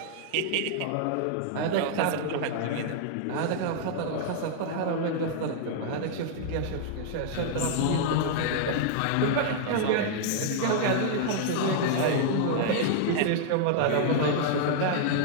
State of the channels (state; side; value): different; both; correlation -0.01